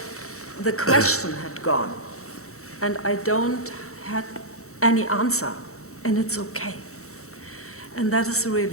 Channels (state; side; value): late; right; 0.64 ms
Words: the question had gone, and I don't have any answer, and it's okay. And that is